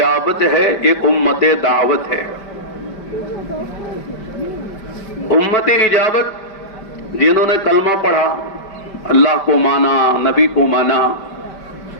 ہے، ایک امت دعوت ہے۔ امت اجابت جنہوں نے کلمہ پڑھا، اللہ کو مانا، نبی کو مانا،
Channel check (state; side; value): late; right; 5.1 ms